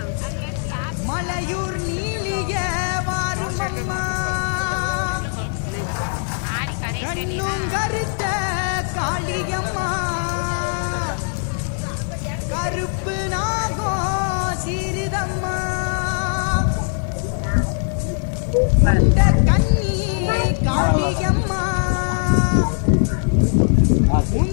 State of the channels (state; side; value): silent; right; 64 dB below the other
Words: மலையூர் நீலிய வாரும் அம்மா கண்ணும் கருத்த காளியம்மா கருப்பு நாகோ சிறிதம்மா அந்த கண்ணி காளியம்மா